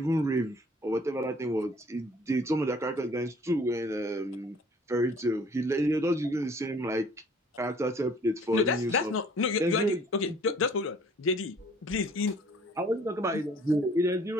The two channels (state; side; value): normal; both; correlation 0.55